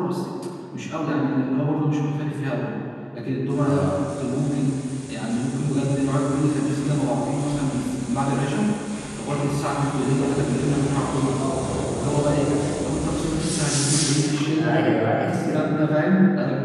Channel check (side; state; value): both; identical; correlation 1.00